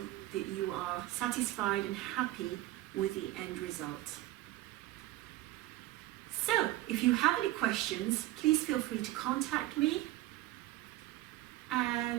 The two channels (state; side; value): quieter; left; 16.7 dB